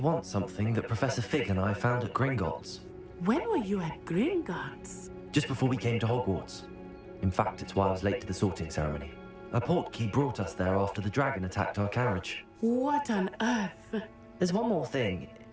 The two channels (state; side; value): identical; both; correlation 1.00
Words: something that Professor Fig and I found at Gringotts. When were you at Gringotts? Just before we came to Hogwarts. In fact, it's why I was late to the sorting ceremony. A portkey brought us there after the dragon attacked our carriage. What on earth? There's one more thing.